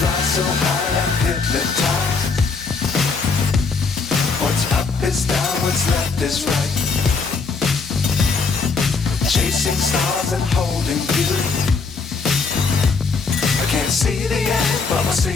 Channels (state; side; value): quieter; right; 4.6 dB